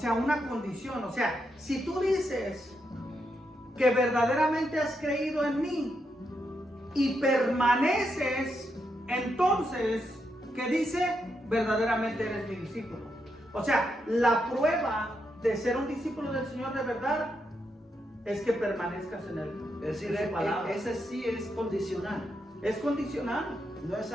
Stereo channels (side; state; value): both; normal; correlation 0.82